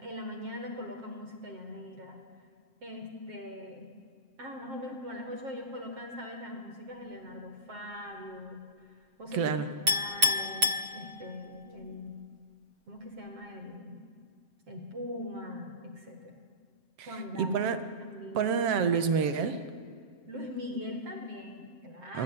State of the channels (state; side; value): late; left; 7.5 ms